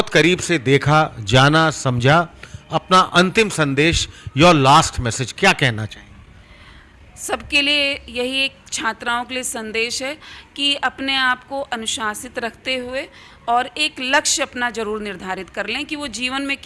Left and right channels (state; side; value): identical; both; correlation 1.00